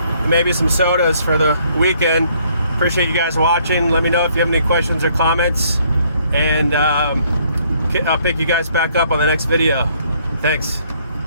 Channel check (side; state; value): both; inverted; correlation -0.66